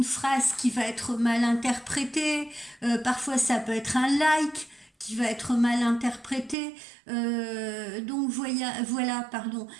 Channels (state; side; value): drops out; left; at 6.6 s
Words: phrase qui va être mal interprétée, parfois ça peut être un like qui va être mal interprété. Donc